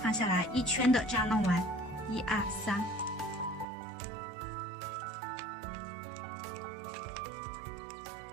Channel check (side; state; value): left; drops out; at 3.7 s